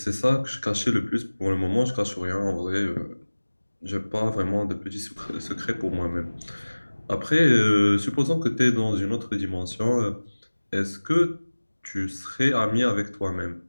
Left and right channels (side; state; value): both; inverted; correlation -1.00